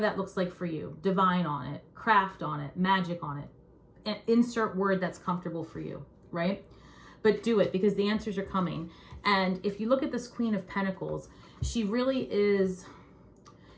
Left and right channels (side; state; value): both; identical; correlation 1.00